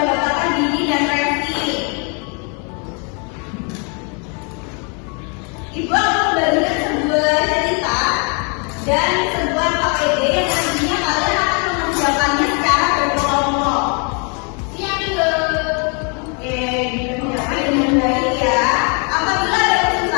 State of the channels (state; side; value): quieter; right; 36.0 dB